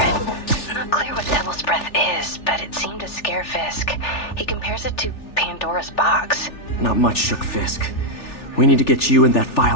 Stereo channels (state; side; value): late; right; 3.4 ms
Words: Not clear what Devil's Breath is, but it seemed to scare Fisk. He compares it to Pandora's box. Not much shook Fisk. We need to get you and that